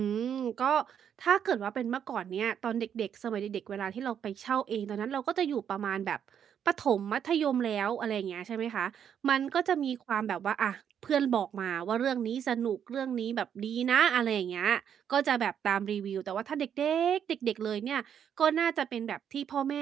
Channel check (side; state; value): left; quieter; 8.6 dB